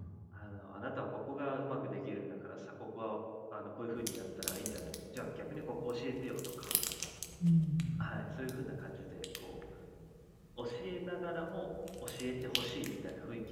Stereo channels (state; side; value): identical; both; correlation 1.00